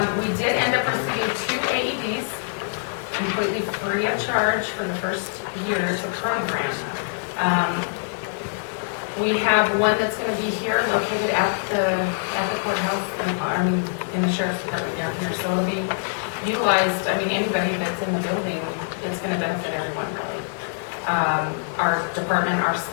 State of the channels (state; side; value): silent; right; digital silence